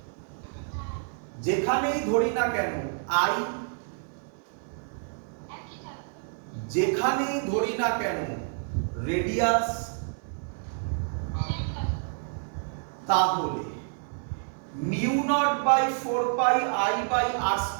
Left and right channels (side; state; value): left; silent; 59 dB below the other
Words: যেখানেই ধরি না কেন আই, যেখানেই ধরি না কেন রেডিয়াস, তাহলে mu not by 4 pi I by R